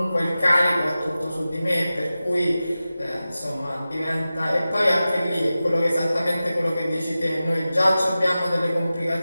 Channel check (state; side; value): inverted; both; correlation -0.95